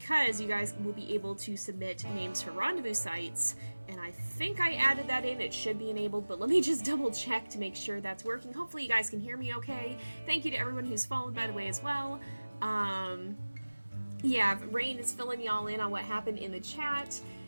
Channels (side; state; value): both; inverted; correlation -1.00